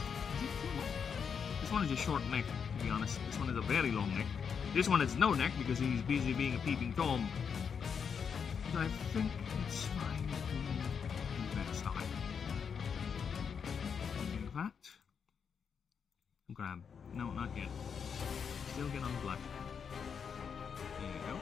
it too long? This one is a short neck, to be honest. This one is a very long neck. This one is no neck because he's busy being a peeping Tom. But I think it's fine to do that side. Like that. Grab. No, not yet. Still get on black. There you go.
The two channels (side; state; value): right; quieter; 6.7 dB